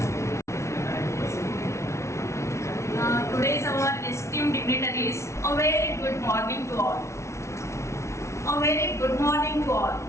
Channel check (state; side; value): late; right; 0.13 ms